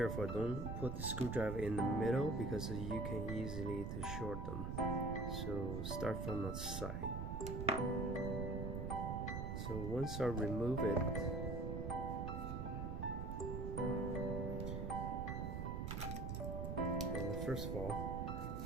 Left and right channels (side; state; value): right; noise; rumble, 3 dB below the sound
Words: don't put the screwdriver in the middle because you can easily to short them. So start from the side. So once I remove it, and first of all,